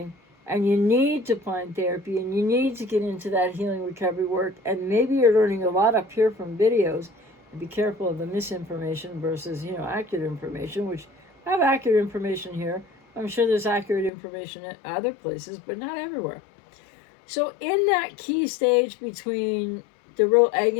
And you need to find therapy, and you need to get into that healing recovery work. And maybe you're learning a lot up here from videos. And be careful of the misinformation versus, accurate information, which I have accurate information here. I'm sure there's accurate information at other places, but not everywhere. So in that key stage between the real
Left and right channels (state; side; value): drops out; right; at 14.1 s